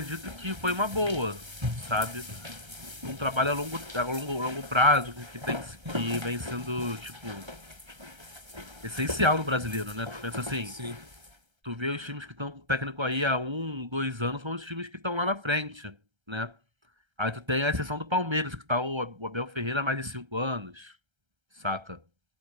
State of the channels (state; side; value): late; left; 1.3 ms